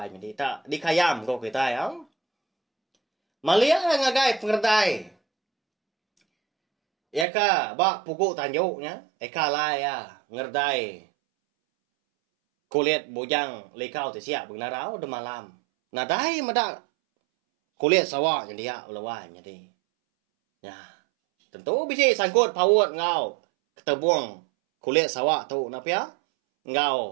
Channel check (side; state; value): left; drops out; at 7.2 s